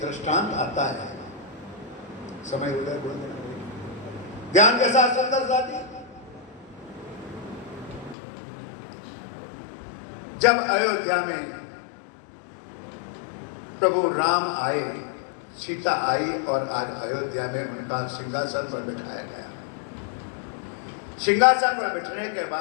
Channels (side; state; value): right; drops out; at 8.2 s